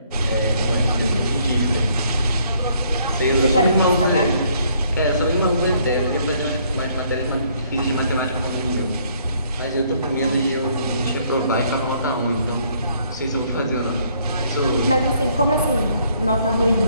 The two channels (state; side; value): inverted; both; correlation -0.66